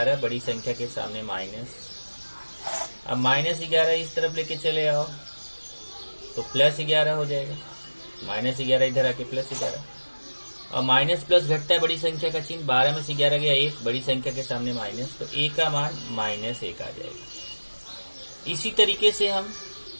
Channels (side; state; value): both; inverted; correlation -1.00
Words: बड़ी संख्या के सामने माइनस। अब -11 इस तरफ लेके चले आओ तो +11 हो जाएगा। -11 इधर आके +11 और माइनस प्लस घटता है बड़ी संख्या का चिन्ह। 12 में से 11 गया 1, बड़ी संख्या के सामने माइनस, तो a का मान -1 आ जाएगा। इसी तरीके से हम